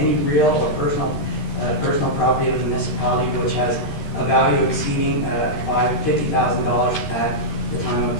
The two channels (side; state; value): right; late; 13 ms